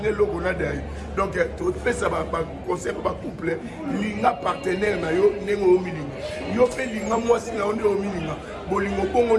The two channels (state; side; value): identical; both; correlation 1.00